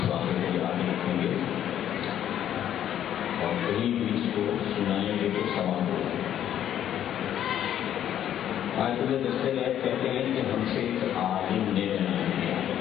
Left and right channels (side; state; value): right; quieter; 10.7 dB